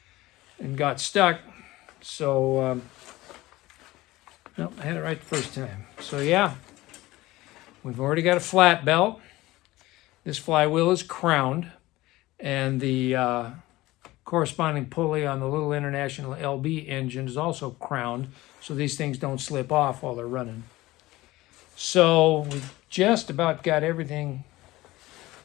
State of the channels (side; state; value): right; quieter; 18.4 dB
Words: and got stuck. So, no, I had it right the first time. So yeah, we've already got a flat belt. This flywheel is crowned, and the corresponding pulley on the little International LB engine is also crowned, so these things don't slip off while they're running. So we just about got everything